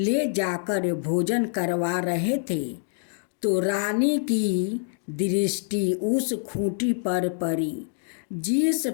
जाकर भोजन करवा रहे थे तो रानी की दृष्टि उस खूंटी पर पड़ी जिस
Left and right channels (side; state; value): right; silent; 61 dB below the other